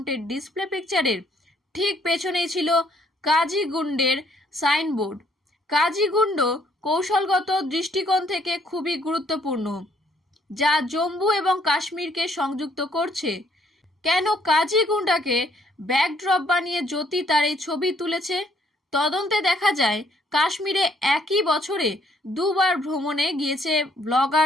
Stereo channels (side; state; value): both; normal; correlation 0.66